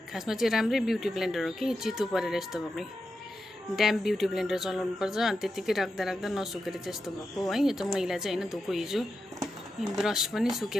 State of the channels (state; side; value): normal; both; correlation 0.89